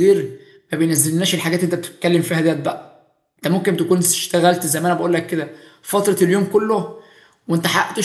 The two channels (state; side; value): identical; both; correlation 1.00